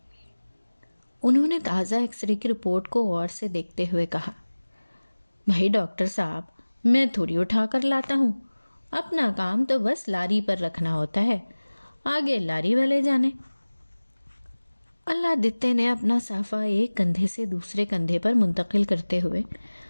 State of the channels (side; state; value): both; inverted; correlation -1.00